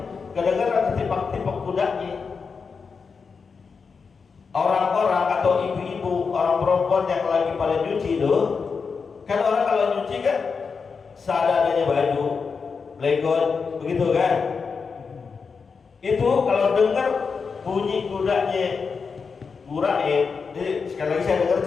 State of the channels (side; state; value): right; quieter; 5.3 dB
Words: Kadang-kadang ketipak-tipak kudanya. Orang-orang atau ibu-ibu, orang perempuan yang lagi pada nyuci tuh, kan orang kalau nyuci kan seadanya baju, legon, begitu kan? Itu kalau dengar bunyi kudanya Gurain, jadi sekali lagi saya dengar